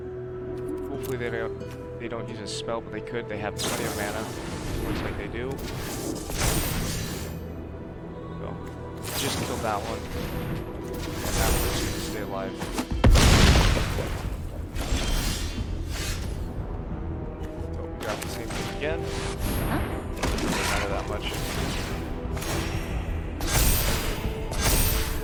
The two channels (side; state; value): both; identical; correlation 1.00